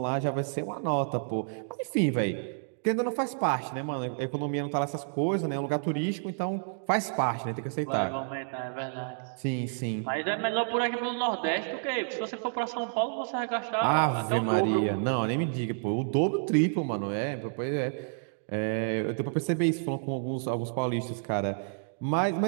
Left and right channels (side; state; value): left; silent; digital silence